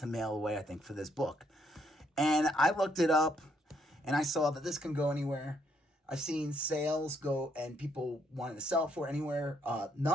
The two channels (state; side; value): normal; both; correlation 0.72